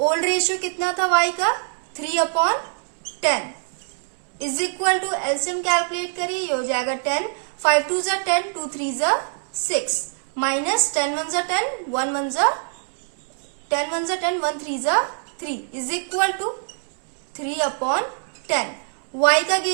रेशियो कितना था y का 3/10 is equal to LCM calculate करिए। ये हो जाएगा 10, 5 2 जा 10, 2 3 जा 6 माइनस 10 1 जा 10, 1 1 जा 10 1 जा 10, 1 3 जा 3 इज इक्वल टू 3/10। y का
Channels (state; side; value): silent; left; digital silence